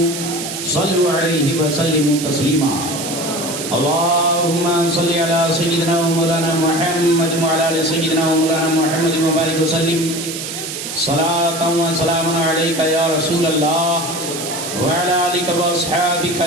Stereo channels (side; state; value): right; noise; hiss, 7 dB below the sound